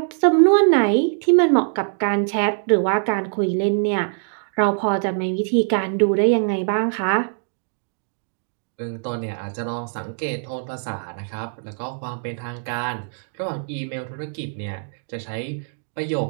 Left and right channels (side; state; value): left; silent; 64 dB below the other